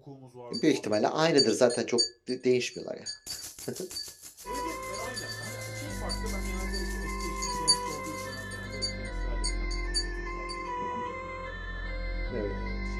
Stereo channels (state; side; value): identical; both; correlation 1.00